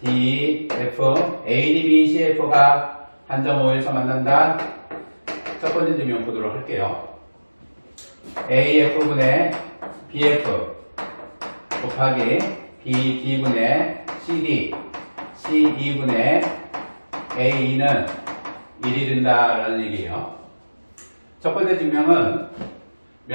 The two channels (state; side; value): inverted; both; correlation -1.00